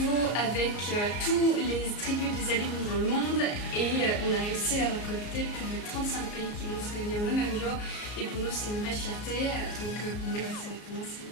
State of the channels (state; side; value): late; right; 34 ms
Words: avec tous les tribus des alumni dans le monde et on a réussi à récolter plus de 35 pays qui vont se réunir le même jour et pour nous c'est une vraie fierté, donc pour moi c'est